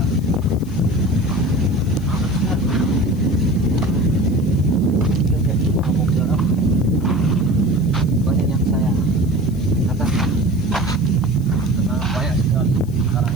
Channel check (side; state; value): left; noise; hiss, 25 dB below the sound